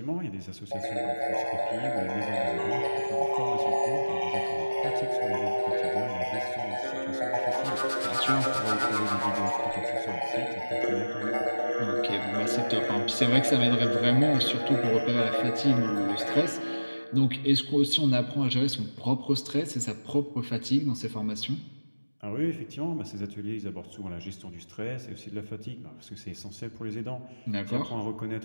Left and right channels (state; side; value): inverted; both; correlation -1.00